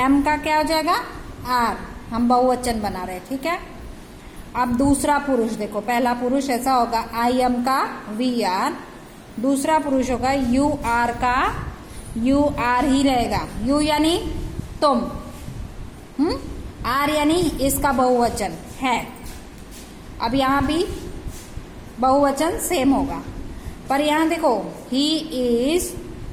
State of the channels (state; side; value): identical; both; correlation 1.00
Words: का क्या हो जाएगा? आर। हम बहुवचन बना रहे हैं, ठीक है। अब दूसरा पुरुष देखो, पहला पुरुष ऐसा होगा आई एम का वी आर, दूसरा पुरुष होगा यू आर का यू आर ही रहेगा। यू यानी तुम, आर यानी इसका बहुवचन है। अब यहां भी बहुवचन सेम होगा, पर यहां देखो ही इज,